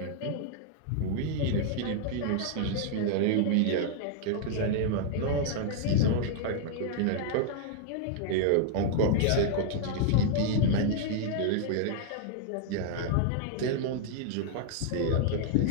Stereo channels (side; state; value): both; different; correlation -0.01